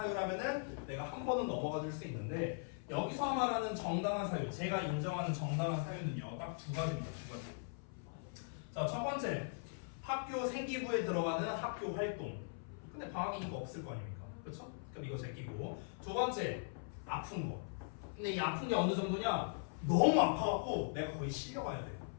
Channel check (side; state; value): right; silent; 51 dB below the other